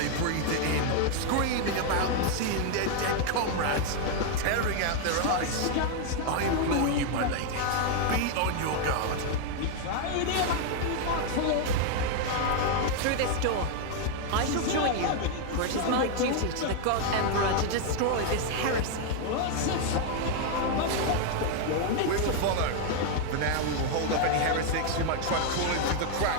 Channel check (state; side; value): different; both; correlation 0.00